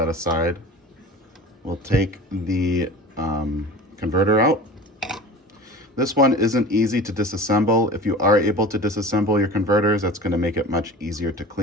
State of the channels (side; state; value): both; normal; correlation 0.37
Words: aside. We'll take the converter out. This one isn't easy to disassemble. If you are able to disassemble your converters, that's going to make it much easier to